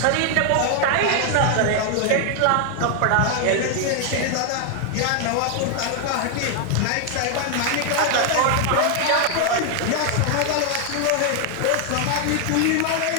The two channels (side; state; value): both; different; correlation 0.00